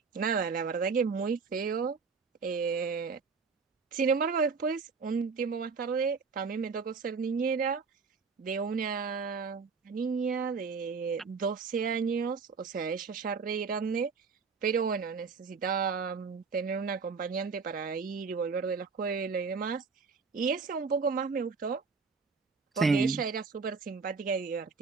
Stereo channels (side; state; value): left; quieter; 5.1 dB